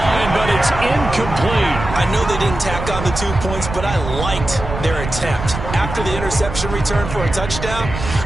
but it's incomplete. I know they didn't tack on the 2 points, but I liked their attempt. After the interception return for a touchdown,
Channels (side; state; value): right; noise; rumble, 7 dB below the sound